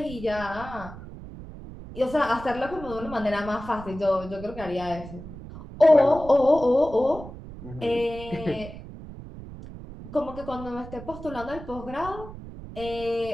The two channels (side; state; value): right; noise; rumble, 13 dB below the sound